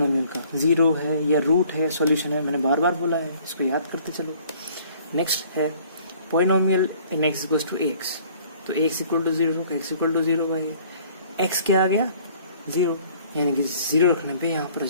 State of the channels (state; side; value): inverted; both; correlation -0.56